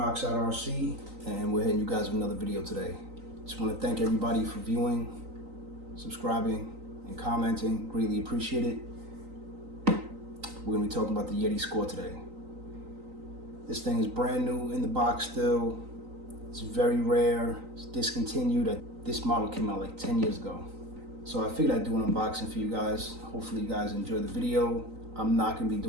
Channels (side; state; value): left; late; 3.9 ms